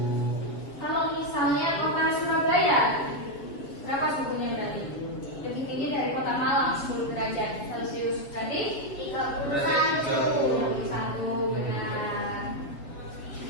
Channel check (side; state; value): right; late; 7.2 ms